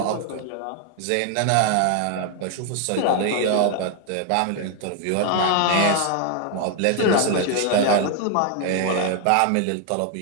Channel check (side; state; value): both; different; correlation 0.01